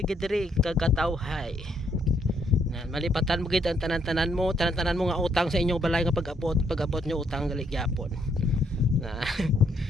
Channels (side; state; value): both; normal; correlation 0.72